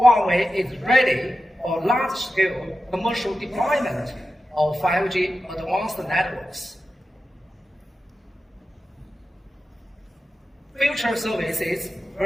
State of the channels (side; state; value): both; normal; correlation 0.92